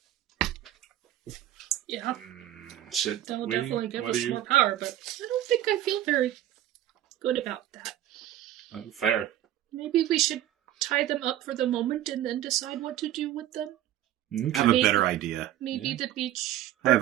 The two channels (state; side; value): quieter; left; 12.7 dB